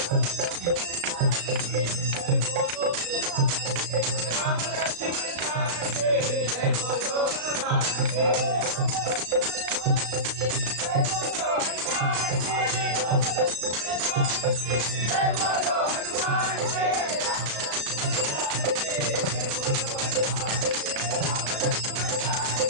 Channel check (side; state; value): left; late; 35 ms